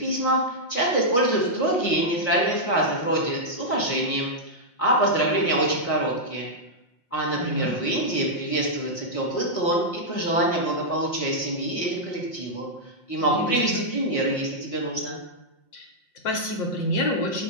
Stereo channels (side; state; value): right; late; 5.6 ms